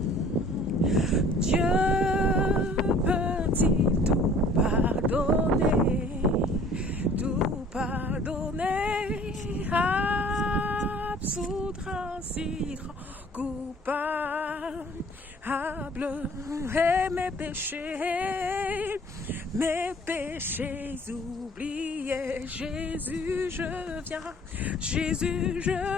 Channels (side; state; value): both; normal; correlation 0.52